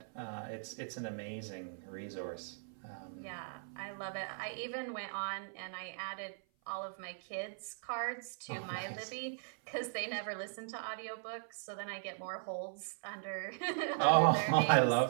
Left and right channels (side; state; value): left; silent; 52 dB below the other